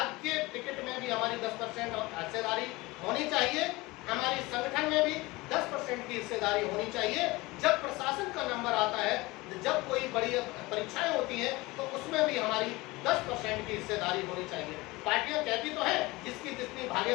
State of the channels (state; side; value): quieter; right; 21.9 dB